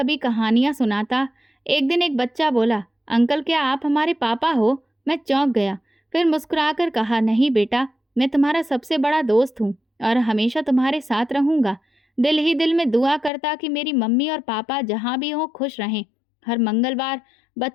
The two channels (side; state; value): right; drops out; at 13.3 s